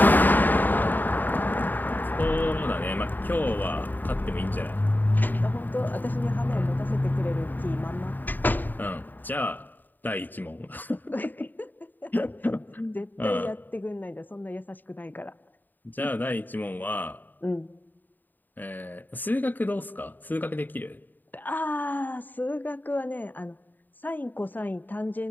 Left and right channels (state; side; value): late; right; 0.089 ms